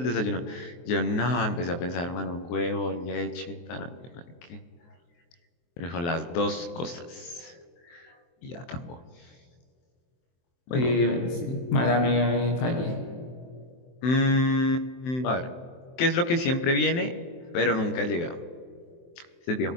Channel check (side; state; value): right; late; 23 ms